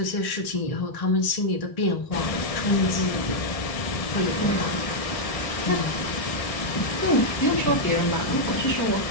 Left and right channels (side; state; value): right; late; 1.6 ms